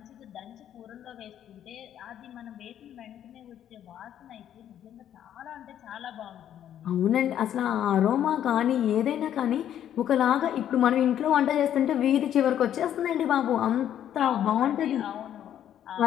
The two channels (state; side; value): quieter; right; 10.5 dB